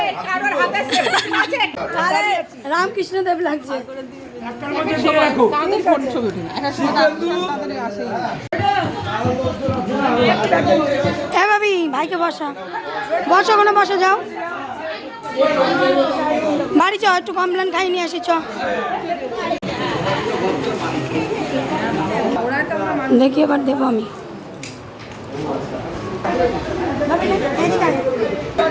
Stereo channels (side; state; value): both; identical; correlation 1.00